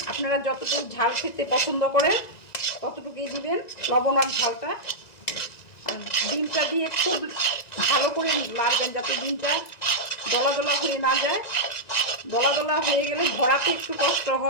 আপনারা যতটুকু ঝাল খেতে পছন্দ করেন ততটুকুই দিবেন লবণ আর ঝালটা। আর ডিমটা দিয়ে খুব ভালো করে নাড়বেন যাতে ডিমটা দলা দলা হয়ে না যায়। দলা দলা হয়ে গেলে ভরাতে একটু কষ্ট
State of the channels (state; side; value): late; right; 1.9 ms